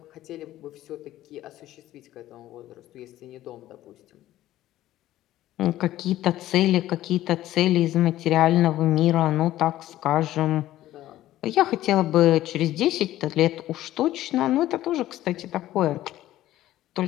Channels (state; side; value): quieter; right; 14.3 dB